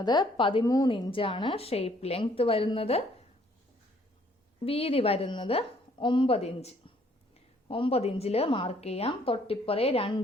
13 ഇഞ്ചാണ്. ഷേപ്പ് ലെങ്ത് വരുന്നത്. വീതി വരുന്നത് 9 ഇഞ്ച്. 9 ഇഞ്ചിൽ മാർക്ക് ചെയ്യാം. തൊട്ടിപ്പുറേ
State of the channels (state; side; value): normal; both; correlation 0.63